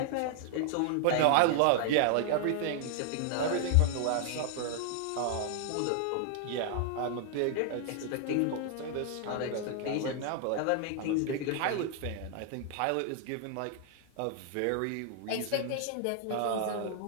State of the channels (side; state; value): both; different; correlation 0.00